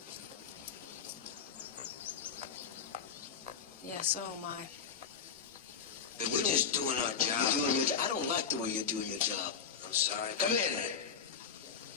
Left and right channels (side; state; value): right; quieter; 6.6 dB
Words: Yeah, so am I. We're just doing our job. You're doing your job. I don't like the way you're doing your job. I'm sorry. Come in.